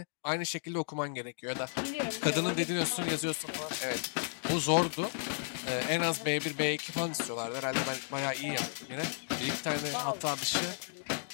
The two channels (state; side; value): silent; right; digital silence